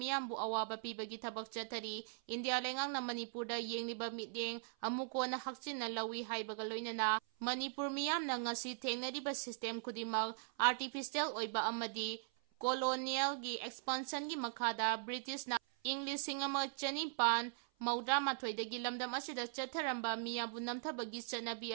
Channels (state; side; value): silent; left; 51 dB below the other